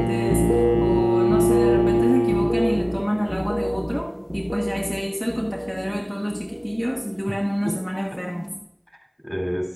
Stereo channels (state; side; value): identical; both; correlation 1.00